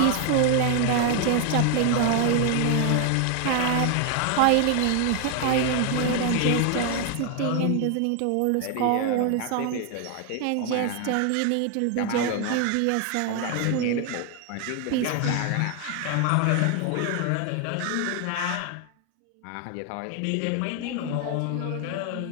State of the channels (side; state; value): both; different; correlation 0.00